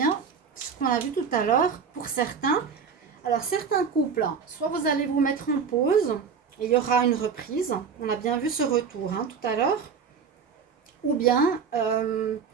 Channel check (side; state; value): left; quieter; 6.2 dB